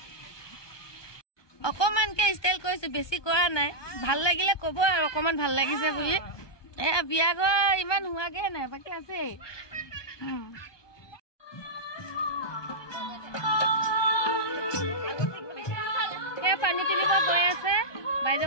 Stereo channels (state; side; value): late; right; 1.2 ms